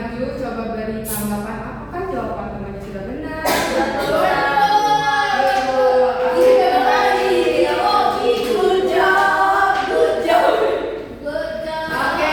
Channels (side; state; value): both; identical; correlation 1.00